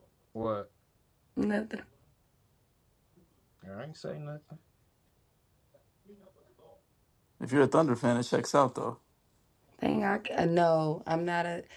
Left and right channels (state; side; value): identical; both; correlation 1.00